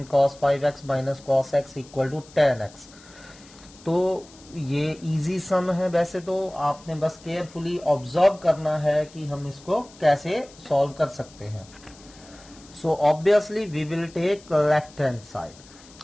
cos 5x minus cos x equal to tan x. तो ये easy सम है. वैसे तो आपने बस carefully observe करना है कि हम इसको कैसे सॉल्व कर सकते हैं. So obviously we will take left hand side.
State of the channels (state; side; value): noise; left; hiss, 23 dB below the sound